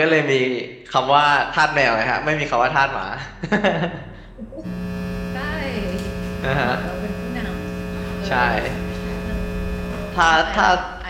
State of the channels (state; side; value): identical; both; correlation 1.00